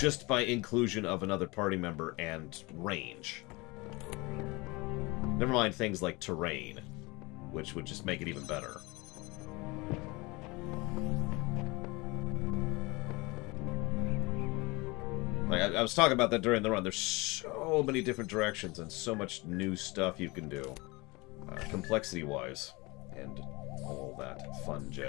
by inclusion of another party member and range. Never mind things like terrain, which would just make it even better. Like, I was talking about that during the run. There's so many different directions and so much new stuff you can do, complexity-wise, and all that fun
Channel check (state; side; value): quieter; right; 24.6 dB